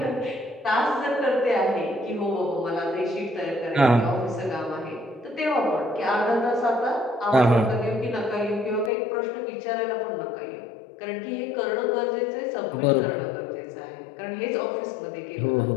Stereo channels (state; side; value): drops out; right; at 8.9 s